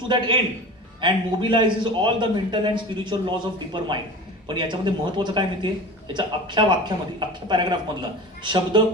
to that end and mobilises all the mental and spiritual laws of deeper mind. पण याच्यामध्ये महत्वाचं काय माहितीये? याच्या अख्ख्या वाक्यामध्ये, अख्ख्या paragraph मधला शब्द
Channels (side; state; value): both; normal; correlation 0.34